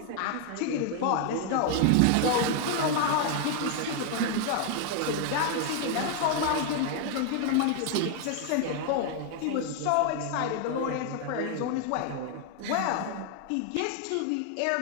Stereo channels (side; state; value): both; different; correlation 0.00